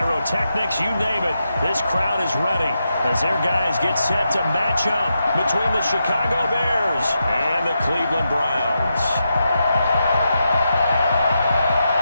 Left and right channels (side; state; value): both; inverted; correlation -0.86